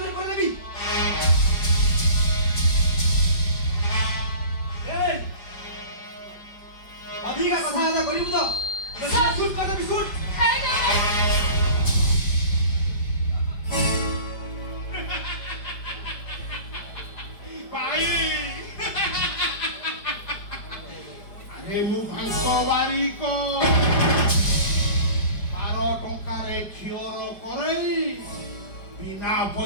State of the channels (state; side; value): late; right; 5.0 ms